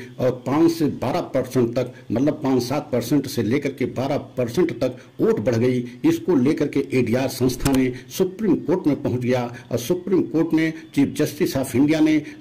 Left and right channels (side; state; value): both; identical; correlation 1.00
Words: और 5 से 12% तक, मतलब 5-7% से लेकर के 12% तक वोट बढ़ गई। इसको लेकर के एडीआर संस्था ने सुप्रीम कोर्ट में पहुंच गया और सुप्रीम कोर्ट ने चीफ जस्टिस ऑफ इंडिया ने